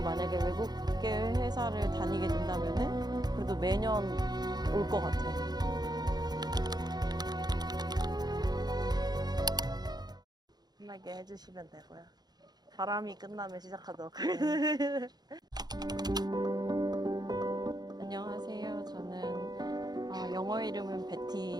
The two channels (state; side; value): late; left; 0.20 ms